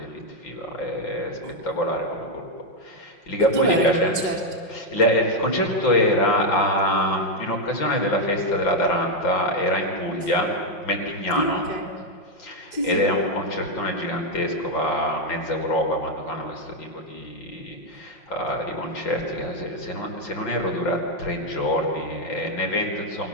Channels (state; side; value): late; right; 5.6 ms